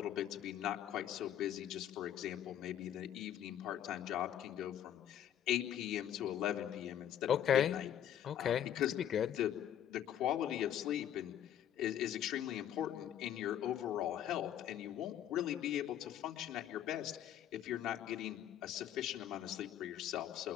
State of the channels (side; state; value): right; quieter; 10.5 dB